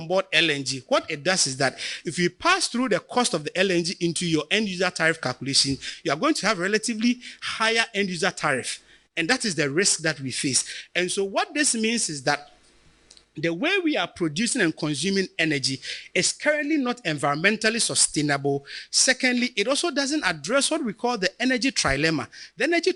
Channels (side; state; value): both; identical; correlation 1.00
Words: board LNG, what it does is that if you pass through the cost of the LNG into your end user tariff calculation, you are going to have a relatively higher end user tariff. And that is the risk that we face. And so what this means is that the way we are producing and consuming energy is currently not environmentally sustainable. Secondly, it also doesn't address what we call the energy trilemma. The energy